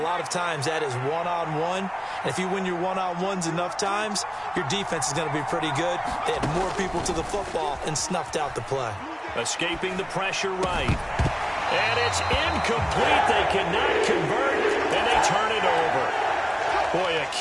lot of times that is one-on-one. And if you win your one-on-ones enough times, your defense is going to be pretty good. They had more people to the football and snuffed out the play. Escaping the pressure right. And it's incomplete. They cannot convert, and they turn it over. Boy, a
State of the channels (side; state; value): both; identical; correlation 1.00